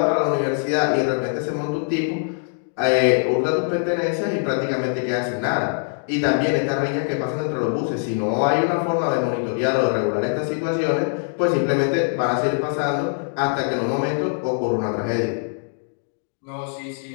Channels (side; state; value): right; silent; digital silence